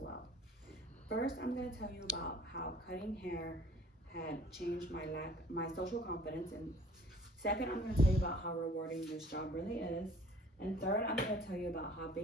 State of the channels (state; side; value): normal; both; correlation 0.52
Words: First, I'm going to tell you about how cutting hair had changed my social confidence, and second, I'm going to tell you about how rewarding this job really is, and third, I'm going to tell you about how